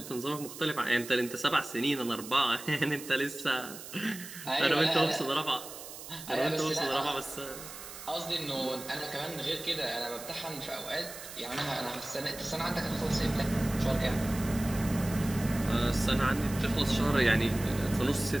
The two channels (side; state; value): right; noise; hiss, 13 dB below the sound